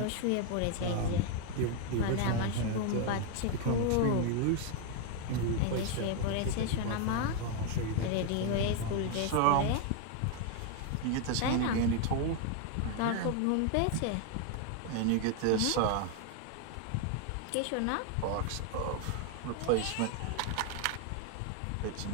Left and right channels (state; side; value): different; both; correlation 0.01